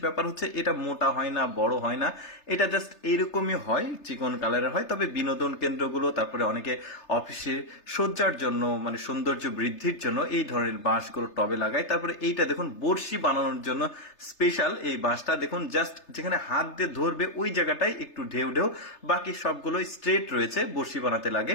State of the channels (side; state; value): right; late; 3.3 ms